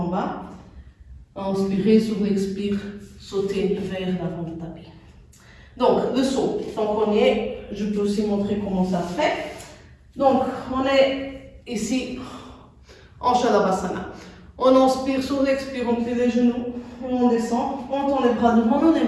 bas. Inspirer sur l'expire, sauter vers l'avant du tapis. Donc, le saut. Donc, premier. Je peux aussi montrer comment ça se fait. Donc, on est ici en Shalabhasana. On inspire, sur l'expire, on plie les genoux, et on descend, on tend les bras devant nous, les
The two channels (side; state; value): both; identical; correlation 1.00